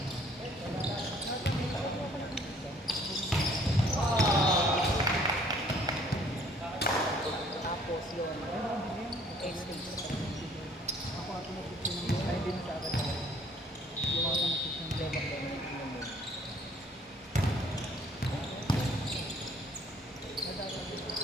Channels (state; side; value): normal; both; correlation 0.59